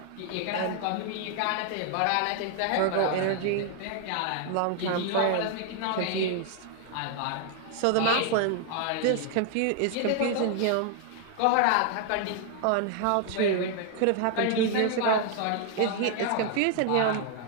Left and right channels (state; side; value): different; both; correlation 0.00